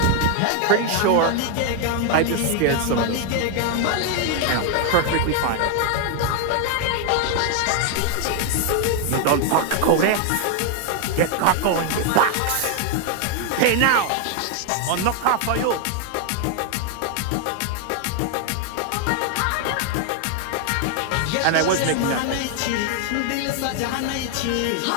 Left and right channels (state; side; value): different; both; correlation 0.00